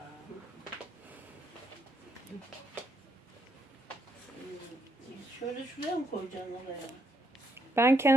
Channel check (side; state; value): both; normal; correlation 0.76